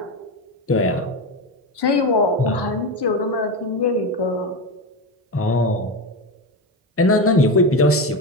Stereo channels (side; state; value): both; normal; correlation 0.17